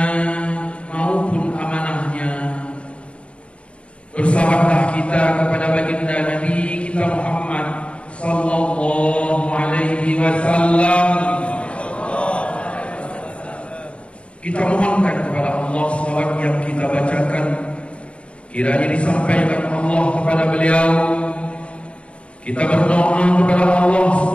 maupun amanahnya. Bersalawatlah kita kepada baginda Nabi kita Muhammad sallallahu alaihi wasallam. Kita mohonkan kepada Allah salawat yang kita bacakan kiranya disampaikan Allah kepada beliau. Kita berdoa kepada Allah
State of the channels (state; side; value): late; right; 0.060 ms